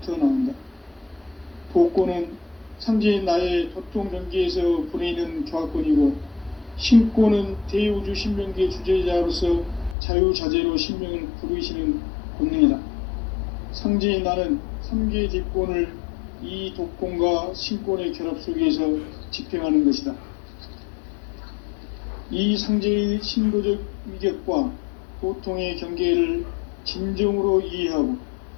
나온다. 도권은 상제인 나의 도통 경계에서 보내는 조화권이고, 신권은 대우주 신명기의 주제자로서 자유자재로 신명을 부르시는 권능이다. 상제인 나는 3개의 뒷권을 이 도권과 신권의 결합 속에서 집행하는 것이다. 이 상제의 신도적 위격과 도통의 경계를 진정으로 이해하고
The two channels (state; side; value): drops out; right; at 10.0 s